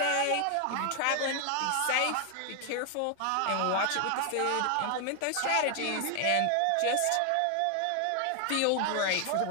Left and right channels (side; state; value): both; different; correlation 0.00